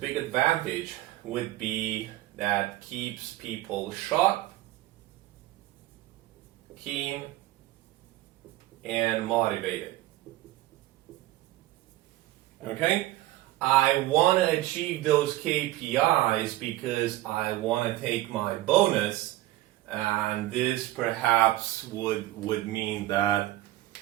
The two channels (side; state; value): left; quieter; 16.5 dB